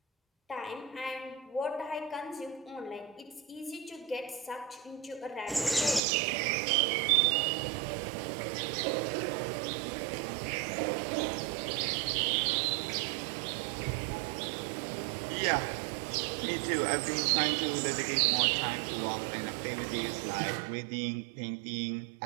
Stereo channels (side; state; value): left; drops out; at 6.0 s